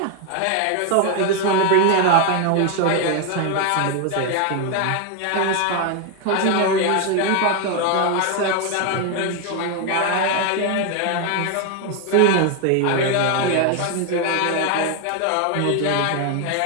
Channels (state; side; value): different; both; correlation 0.01